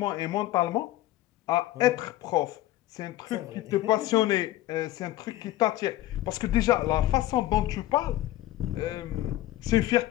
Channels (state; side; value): quieter; right; 15.4 dB